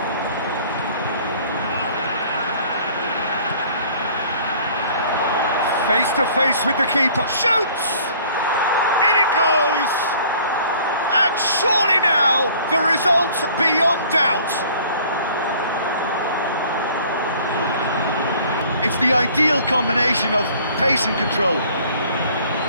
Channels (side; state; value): both; inverted; correlation -0.53